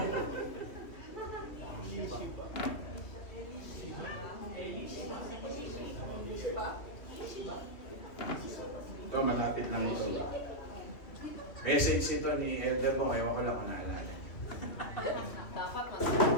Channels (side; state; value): right; late; 2.4 ms